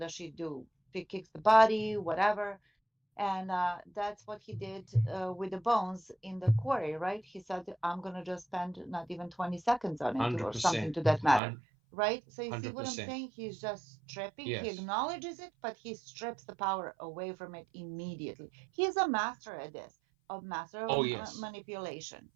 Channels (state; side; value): drops out; left; at 11.4 s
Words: she do? She kicks the body, whatever. And that's what he did with the bones in the quarry, right? He said, I'm going to just spend not even 20 seconds on it 100%. or something to that matter, right? So you see what I'm 100%. saying? He's just stripping. Yes. He acknowledges it, but he strips the power away from it immediately. He's a master at this, a master of manipulation.